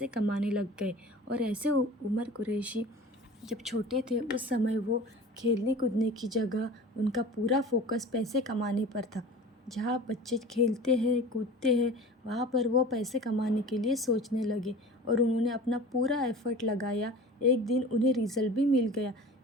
कमाने लग गए। और ऐसे उमर कुरैशी जब छोटे थे उस समय वो खेलने कूदने की जगह उनका पूरा फोकस पैसे कमाने पर था। जहाँ बच्चे खेलते हैं कूदते हैं वहाँ पर वो पैसे कमाने के लिए सोचने लगे और उन्होंने अपना पूरा एफ़र्ट लगाया। एक दिन उन्हें रिज़ल्ट भी मिल गया।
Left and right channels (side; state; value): both; normal; correlation 0.39